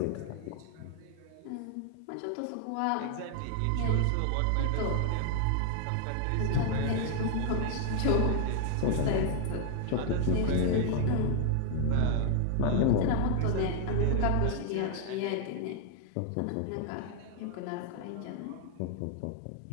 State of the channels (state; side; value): different; both; correlation 0.00